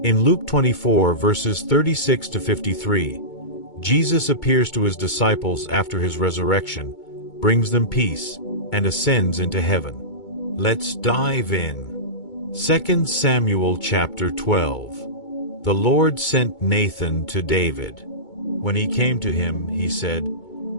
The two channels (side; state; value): right; late; 2.2 ms